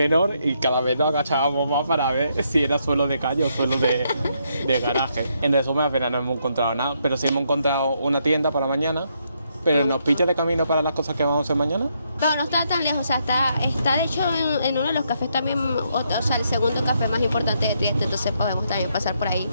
y cada vez nos agachábamos más para ver si era suelo de calle o suelo de garaje. En resumen, al final no hemos encontrado nada, pero sí hemos encontrado una tienda para mañana. Pero nos pilla de camino para las cosas que vamos a hacer mañana. Pero no está tan lejos, o sea, está de hecho en uno de los cafés también, o sea, el segundo café más importante que tiene, entonces podemos también pasar por ahí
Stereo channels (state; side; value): inverted; both; correlation -0.76